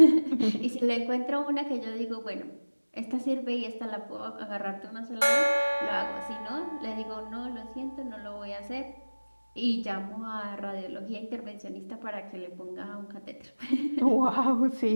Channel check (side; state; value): both; inverted; correlation -1.00